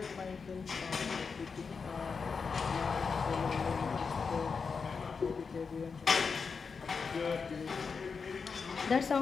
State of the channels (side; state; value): right; quieter; 5.3 dB